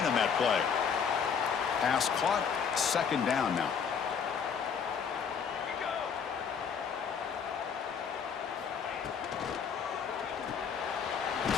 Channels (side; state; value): right; quieter; 6.7 dB